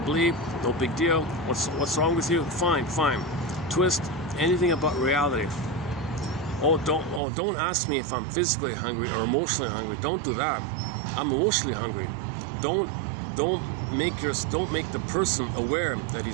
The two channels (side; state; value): left; drops out; at 7.2 s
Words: No big deal. What's wrong with you? Fine. Twist anything about reality. Don't ask me if I'm physically hungry or emotionally hungry. Don't do that. I'm emotionally hungry. Don't make the person aware that